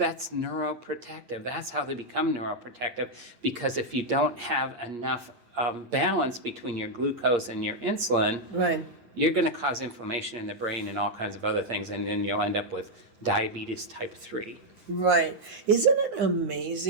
neuroprotective. That's how they become neuroprotective, because if you don't have enough balance between your glucose and your insulin, Right. you're going to cause inflammation in the brain and all kinds of other things, and then you'll end up with diabetes type 3. Right. Isn't it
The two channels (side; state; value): left; late; 8.6 ms